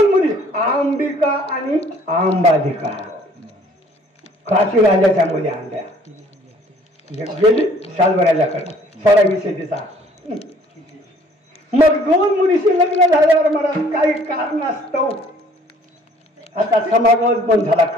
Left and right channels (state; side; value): normal; both; correlation 0.57